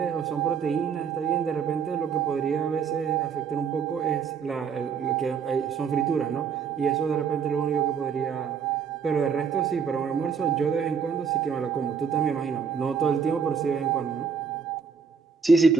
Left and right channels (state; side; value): quieter; left; 6.3 dB